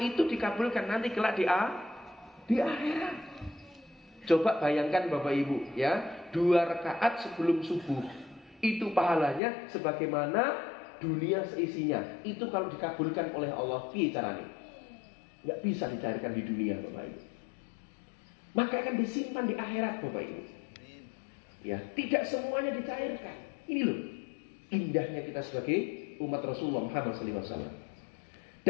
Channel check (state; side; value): drops out; right; at 9.4 s